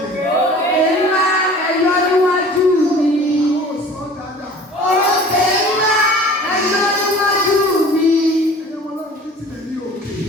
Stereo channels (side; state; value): both; normal; correlation 0.45